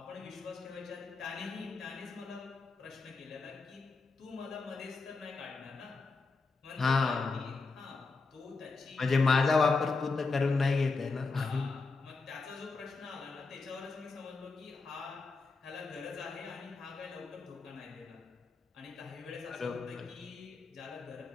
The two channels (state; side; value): quieter; right; 4.0 dB